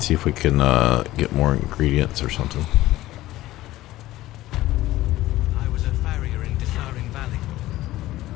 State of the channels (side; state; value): right; quieter; 16.3 dB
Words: if we can get more ingredients or something. I was a farrier in Dissaring Valley.